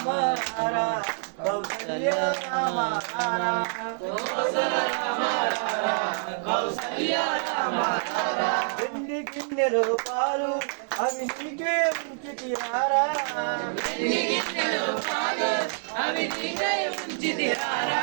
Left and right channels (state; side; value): silent; left; digital silence